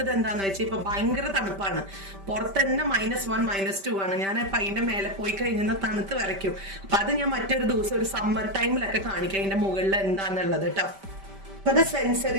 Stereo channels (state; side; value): late; left; 5.1 ms